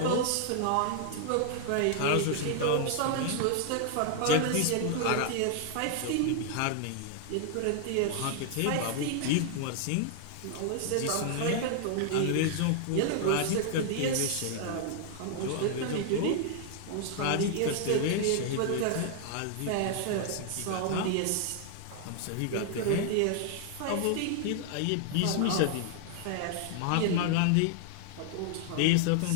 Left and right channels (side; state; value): both; different; correlation 0.00